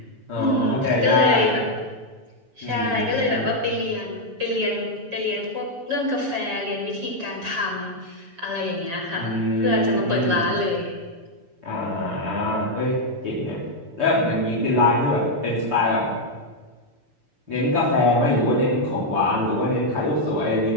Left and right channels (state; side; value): late; left; 6.8 ms